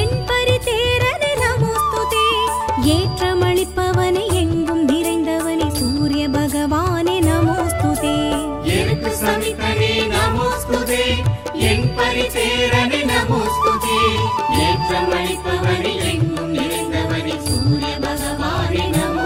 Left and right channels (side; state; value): both; identical; correlation 1.00